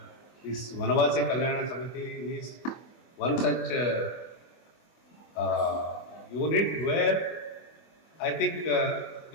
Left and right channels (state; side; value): late; right; 24 ms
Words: this Vanavasi Kalyana Samiti is one such unit where I think